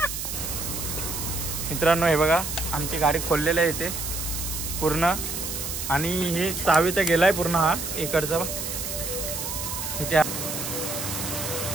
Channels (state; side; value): noise; right; hiss, 4 dB below the sound